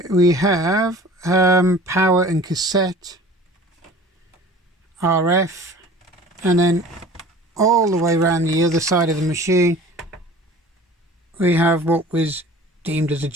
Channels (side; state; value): both; normal; correlation 0.44